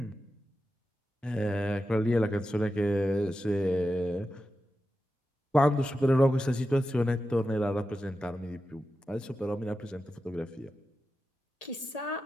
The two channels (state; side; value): normal; both; correlation 0.91